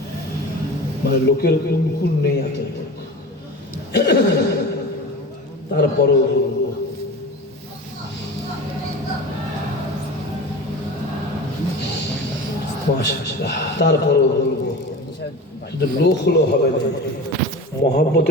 মানে লোকের অনুকূল নেই এত। তারপরও তারপরও বলবো, শুধু লোক হলো হবে না,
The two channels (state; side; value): normal; both; correlation 0.32